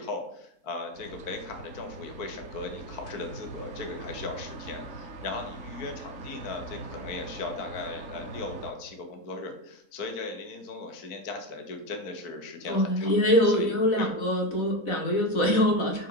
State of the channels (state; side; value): late; right; 4.0 ms